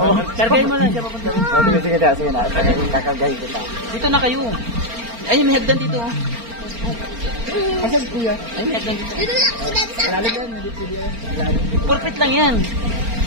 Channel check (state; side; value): late; left; 4.4 ms